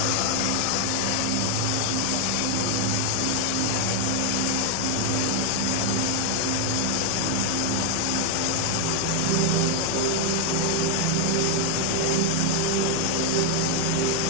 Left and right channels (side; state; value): both; different; correlation 0.01